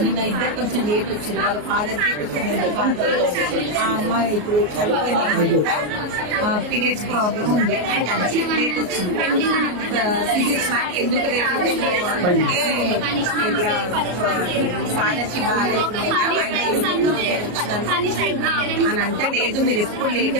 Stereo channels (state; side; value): late; left; 33 ms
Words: నిన్న ఇద్దరు కొంచెం లేట్ వచ్చింది, వాళ్ళ ఫాదర్ కి కొంచెం ఆ అమ్మాయి ఇప్పుడు చనిపోయిన అమ్మాయి కూడా పీరియడ్స్ ప్రాబ్లం ఉంది, లేట్ వచ్చింది. ఫిజిక్స్ మ్యాథ్ ఎందుకు లేట్ వచ్చింది అంటే ఇట్లా ఫాదర్ కి బాగాలేకుండా అని అంటే, లేదు మీరు ఎప్పుడు లేటే